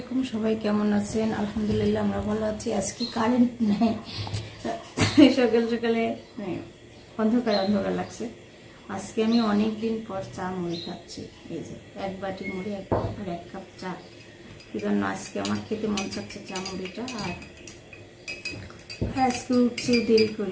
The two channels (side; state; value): both; identical; correlation 1.00